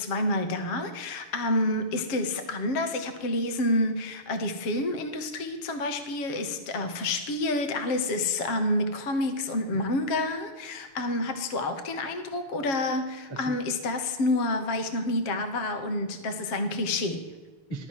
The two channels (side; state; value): right; late; 7.3 ms